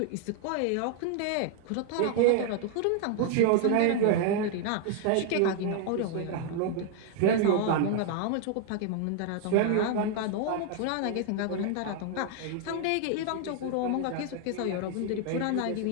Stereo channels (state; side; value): different; both; correlation 0.00